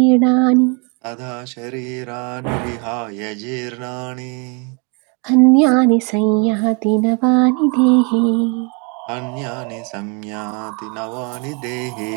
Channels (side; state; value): left; quieter; 33.9 dB